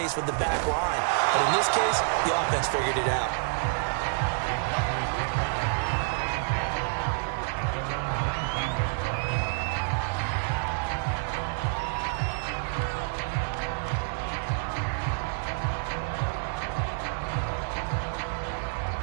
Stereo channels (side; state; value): left; silent; digital silence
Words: with the back line. But in this case, the offense figured it out.